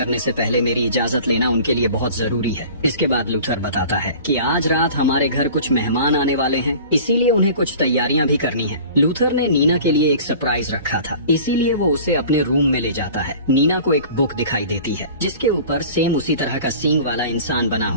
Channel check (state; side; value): inverted; both; correlation -0.43